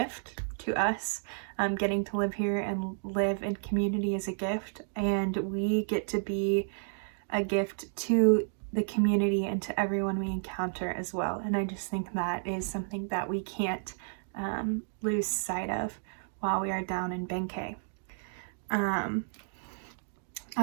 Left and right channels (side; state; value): left; silent; digital silence